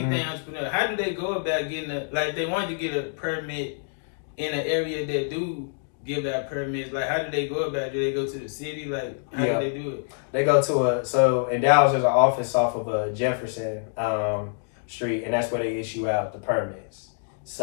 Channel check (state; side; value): silent; right; digital silence